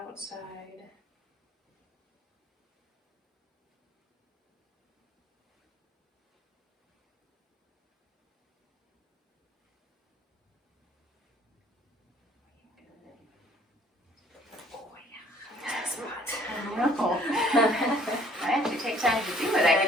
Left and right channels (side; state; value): both; normal; correlation 0.58